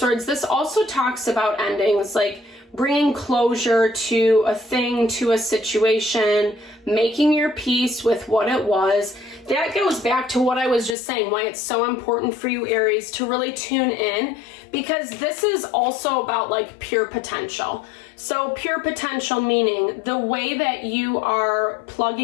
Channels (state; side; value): drops out; right; at 11.0 s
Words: This also talks about endings, like bringing closure to a thing, to a situation, making your peace with what it was. That goes back to what I was just saying, why it's so important for you, Aries, to really tune in, because this is also about like pure potential. So pure potential meaning the way that you are